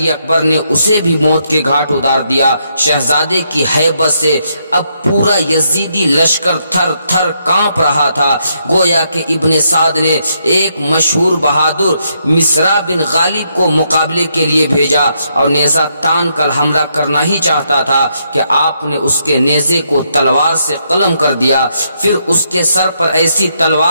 اکبر نے اسے بھی موت کے گھاٹ اتار دیا۔ شہزادے کی ہیبت سے اب پورا یزیدی لشکر تھر تھر کانپ رہا تھا، گویا کہ ابن سعد نے ایک مشہور بہادر مصرع بن غالب کو مقابلے کے لیے بھیجا اور نیزہ تان کر حملہ کرنا ہی چاہتا تھا کہ آپ نے اس کے نیزے کو تلوار سے قلم کر دیا، پھر اس کے سر پر ایسی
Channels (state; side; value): inverted; both; correlation -0.77